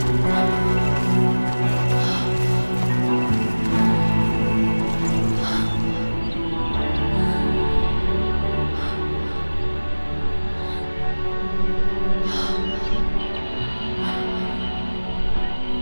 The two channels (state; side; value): inverted; both; correlation -1.00